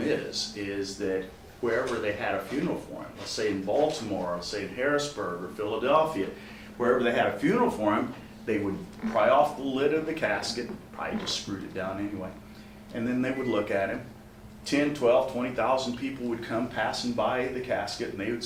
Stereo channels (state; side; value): identical; both; correlation 1.00